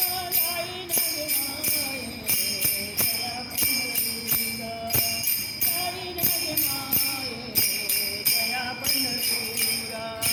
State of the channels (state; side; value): identical; both; correlation 1.00